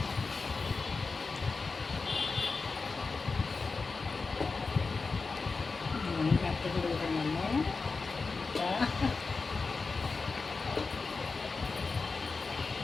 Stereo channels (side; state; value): right; quieter; 4.2 dB